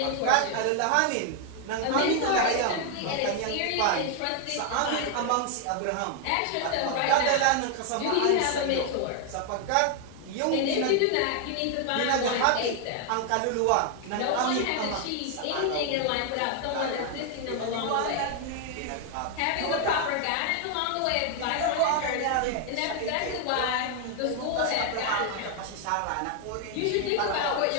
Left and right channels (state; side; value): different; both; correlation 0.00